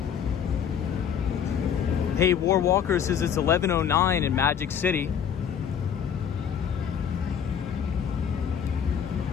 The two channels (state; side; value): quieter; right; 8.1 dB